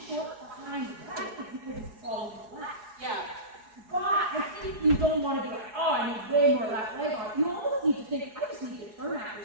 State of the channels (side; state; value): left; late; 4.8 ms